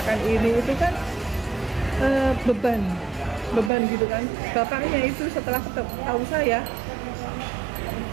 ini, itu kan beban gitu kan. Bapaknya itu setelah tahu saya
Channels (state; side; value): drops out; left; at 3.7 s